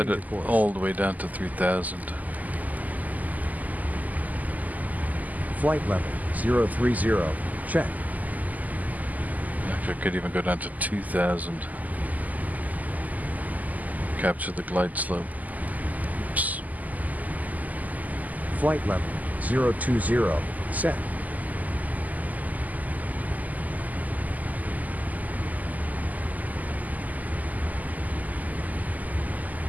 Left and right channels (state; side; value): late; left; 0.079 ms